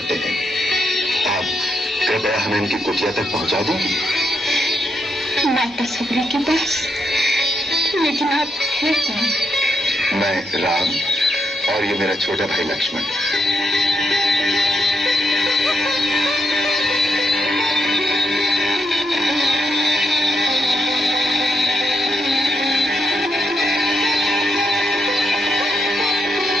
हैं। आप कृपया हमें उनकी कुटिया तक पहुंचा देंगे। माता शबरी के पास? लेकिन आप हैं कौन? मैं राम और ये मेरा छोटा भाई लक्ष्मण।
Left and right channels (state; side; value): normal; both; correlation 0.80